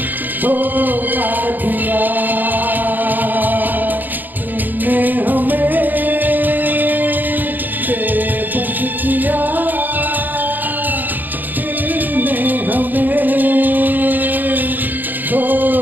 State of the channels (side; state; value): left; late; 0.086 ms